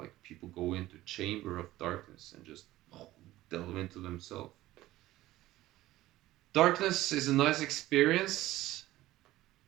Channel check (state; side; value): quieter; left; 16.2 dB